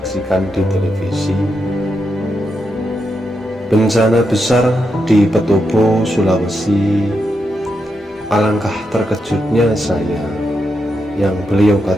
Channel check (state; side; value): normal; both; correlation 0.84